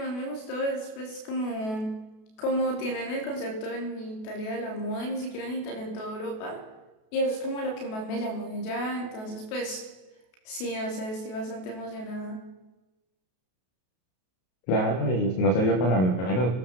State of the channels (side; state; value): right; late; 32 ms